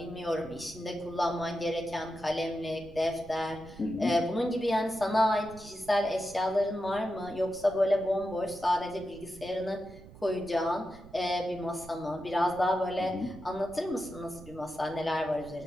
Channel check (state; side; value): noise; right; rumble, 18 dB below the sound